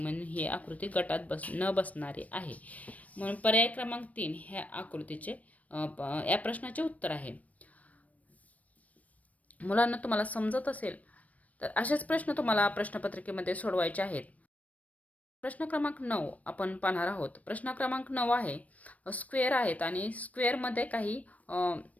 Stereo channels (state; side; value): late; right; 0.070 ms